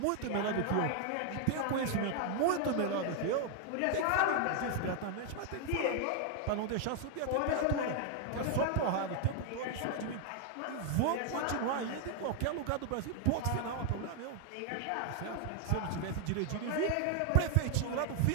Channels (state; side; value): different; both; correlation 0.00